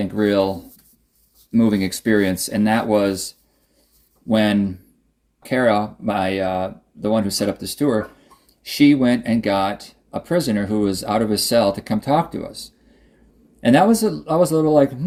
real moving experience, and that was when Kara, the one who set up this tour, she went and got a prisoner who was out of his cell to come talk to us. And I was a little like,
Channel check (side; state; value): both; identical; correlation 1.00